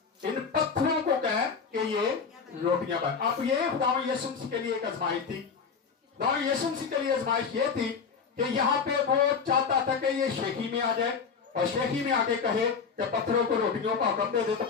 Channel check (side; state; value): right; quieter; 5.8 dB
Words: इन पत्थरों को कह कि ये रोटियां बन। अब ये खुदा यीशु मसीह के लिए एक आजमाइश थी। खुदा यीशु मसीह के लिए आजमाइश ये थी कि यहाँ पे वो चाहता था कि ये शेखी में आ जाए और शेखी में आके कहे कि पत्थरों को रोटियों का हुक्म दे दे तो